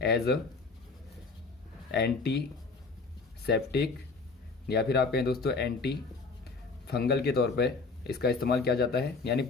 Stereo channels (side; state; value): right; quieter; 4.1 dB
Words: एज अ एंटीसेप्टिक या फिर आप कहें दोस्तों एंटी फंगल के तौर पे इसका इस्तेमाल किया जाता है, यानी